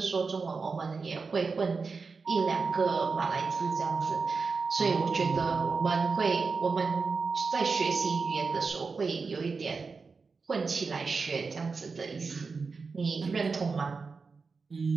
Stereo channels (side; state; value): left; quieter; 4.6 dB